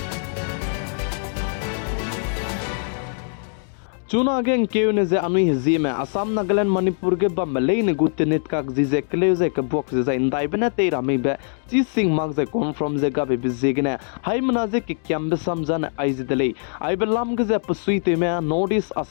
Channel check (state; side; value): silent; right; 56 dB below the other